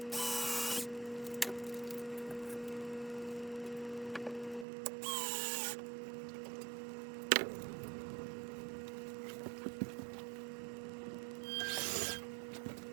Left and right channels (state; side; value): drops out; left; at 4.7 s